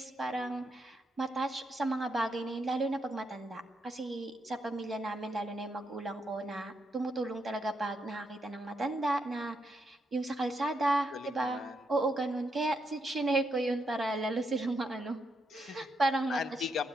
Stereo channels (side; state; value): both; normal; correlation 0.80